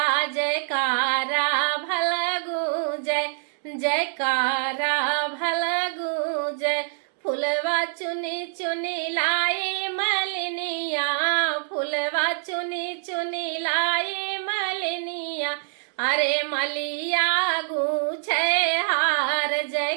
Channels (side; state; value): left; silent; digital silence